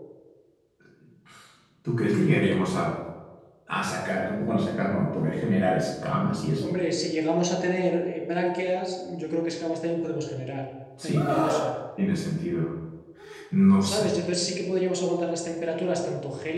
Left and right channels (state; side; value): identical; both; correlation 1.00